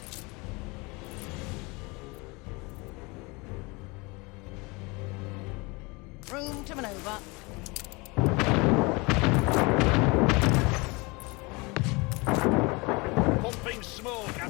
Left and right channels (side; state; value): right; quieter; 26.5 dB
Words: Room to maneuver. Pumping smoke,